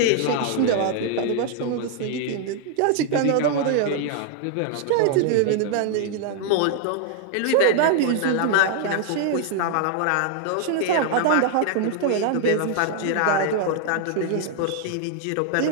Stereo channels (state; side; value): different; both; correlation 0.00